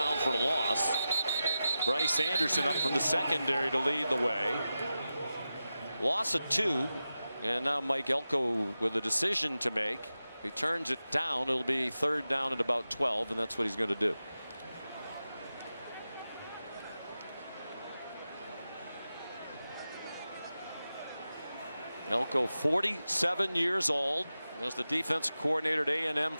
for a loss. Bryce Anderson up from the secondary to lead the way. Loss of 2. And now Mike Elko with a decision to make. He turns it down. It'll be third down at about 12, and that's what he's going to do. Elko, 47 years old, was the defensive coordinator at A&M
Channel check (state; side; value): inverted; both; correlation -0.93